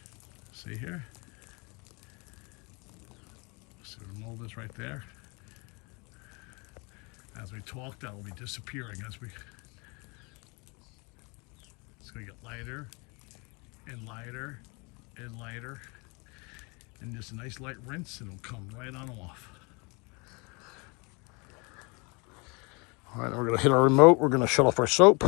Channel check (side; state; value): right; quieter; 29.7 dB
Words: See here? See the mold is right there. As we talk, that will be disappearing as we. It's going to get lighter and lighter and lighter, and just a nice light rinse, and it'll come right on off. All right, we're going to hit our remote. We're going to shut off our soap.